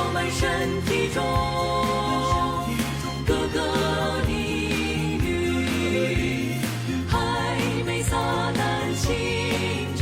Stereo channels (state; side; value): identical; both; correlation 1.00